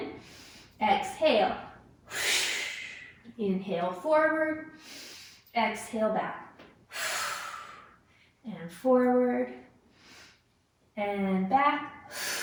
exhale. Inhale forward, exhale back. And forward and back.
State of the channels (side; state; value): both; identical; correlation 1.00